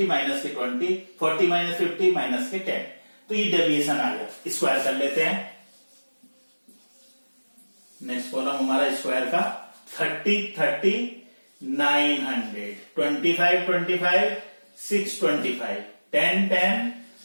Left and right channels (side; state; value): both; inverted; correlation -1.00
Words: माइनस के 20, 40 माइनस 50 माइनस के 10। तो ये डेविएशन आ गया। स्क्वायर कर लेते हैं। नेक्स्ट कॉलम हमारा स्क्वायर का 30 30 900, 25 25 625, 10 10